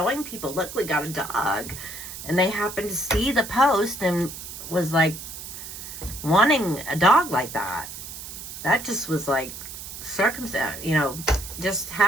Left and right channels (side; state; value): right; noise; hiss, 10 dB below the sound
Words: people, look, we got a dog. And they happened to see the post and was like wanting a dog like that. That just was like circumstance, you know, just